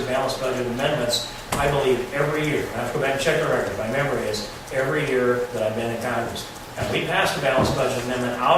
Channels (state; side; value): identical; both; correlation 1.00